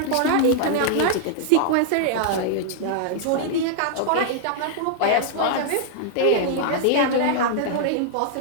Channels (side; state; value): both; different; correlation -0.01